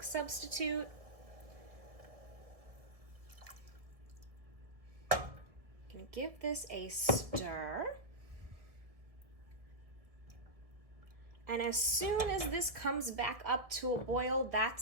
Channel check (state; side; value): late; left; 1.6 ms